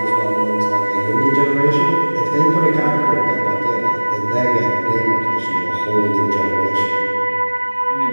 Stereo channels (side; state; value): both; inverted; correlation -1.00